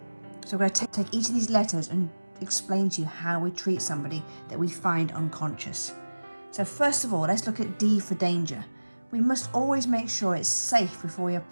So we're going to take each of these letters and explain to you how we treat somebody that we find unconscious. So first of all, let's look at D for danger. We must always make sure it's safe before we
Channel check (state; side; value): inverted; both; correlation -1.00